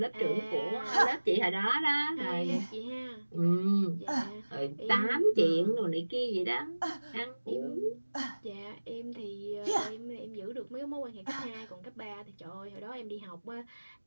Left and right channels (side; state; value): both; inverted; correlation -1.00